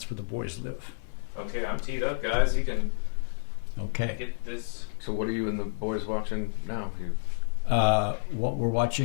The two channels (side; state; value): right; silent; 58 dB below the other